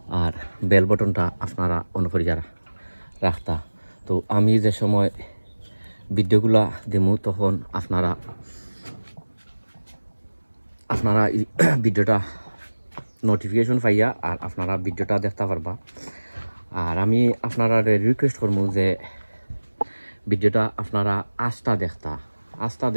আর বেল বটনটা আপনারা অন করিয়া রাখতা। তো আমি যে সময় ভিডিওগুলা দেমু তখন আপনারা ভিডিওটা নোটিফিকেশন পাইয়া আর আপনারা ভিডিওটা দেখতে পারবা। আর আমি আপনারা রিকোয়েস্ট করবো যে ভিডিওটা আপনারা আস্থা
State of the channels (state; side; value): inverted; both; correlation -1.00